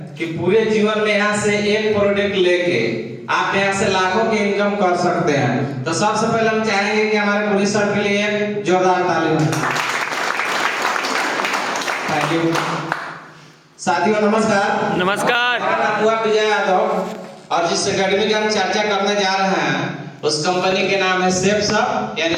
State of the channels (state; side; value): identical; both; correlation 1.00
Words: कि पूरे जीवन में यहाँ से एक प्रोडक्ट लेके आप यहाँ से लाखों की इनकम कर सकते हैं। तो सबसे पहले हम चाहेंगे कि हमारे पुलिस सर के लिए एक जोरदार ताली हो। Thank you. साथियों नमस्कार। नमस्कार। मेरा नाम हुआ विजय यादव और जिस एकेडमी की हम चर्चा करने जा रहे हैं उस कंपनी के नाम है सेफ शॉप यानी